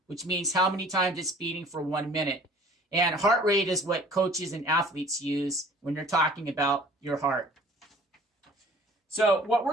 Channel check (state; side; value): normal; both; correlation 0.51